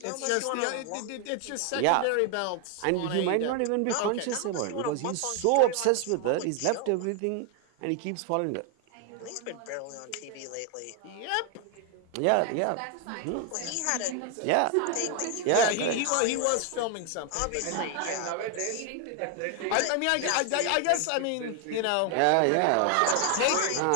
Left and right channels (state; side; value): different; both; correlation 0.01